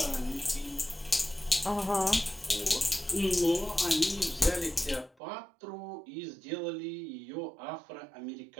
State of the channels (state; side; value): drops out; left; at 5.1 s